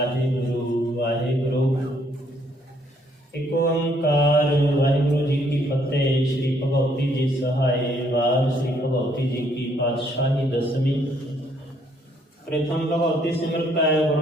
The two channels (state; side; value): normal; both; correlation 0.68